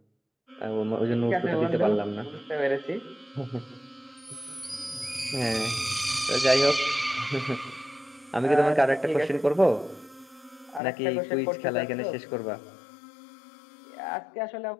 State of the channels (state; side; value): drops out; right; at 10.8 s